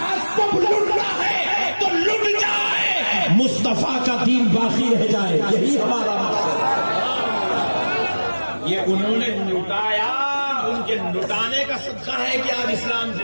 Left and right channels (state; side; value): inverted; both; correlation -1.00